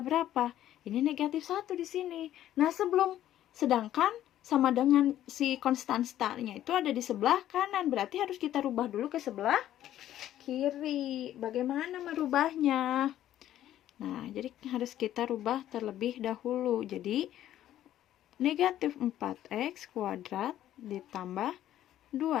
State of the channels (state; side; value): quieter; right; 12.4 dB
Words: Ini negatif 1 di sini. Nah, sedangkan sama dengan si konstan startnya itu ada di sebelah kanan. Berarti harus kita rubah dulu ke sebelah kiri. Bagaimana merubahnya? Nah, jadi harus kita rubah terlebih dahulu. Jadi, negatif 4X kuadrat ditambah